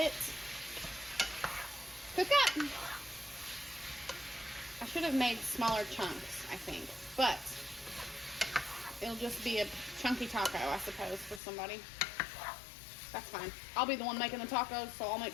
cook up. I should have made smaller chunks, I think, but it'll just be a chunky taco, I suppose, for somebody. That's fine. I'll be the one making the tacos, so I'll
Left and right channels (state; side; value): drops out; right; at 11.4 s